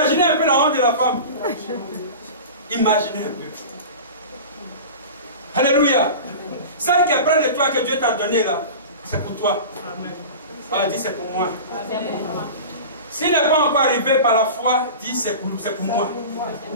un peu la honte de la femme. Imaginez un peu. Alléluia. Celle qui est près de toi que Dieu t'a donné là, c'est pour toi. Alors dis c'est pour moi. S'il n'est pas encore arrivé par la foi, dis c'est pour moi.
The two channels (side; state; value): both; inverted; correlation -0.33